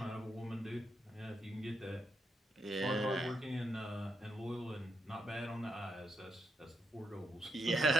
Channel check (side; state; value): both; normal; correlation 0.81